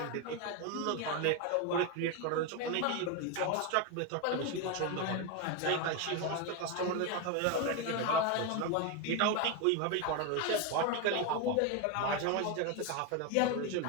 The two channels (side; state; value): both; different; correlation 0.02